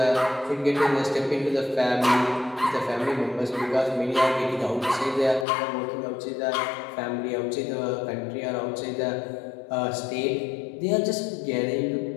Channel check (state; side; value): drops out; right; at 5.5 s